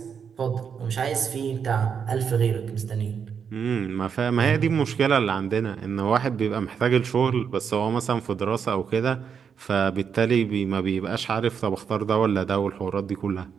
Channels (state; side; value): quieter; left; 7.0 dB